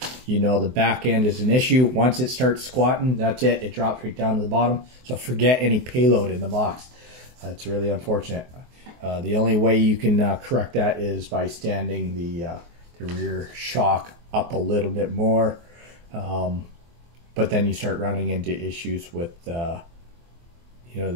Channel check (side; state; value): left; late; 24 ms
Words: the back end is an issue. Once it starts squatting, that's it. It drops right down to the bottom. So forget any payload in the box. It's really unfortunate. The only way you can correct that is by standing the rear shock up a little bit more. But then you start running into issues with the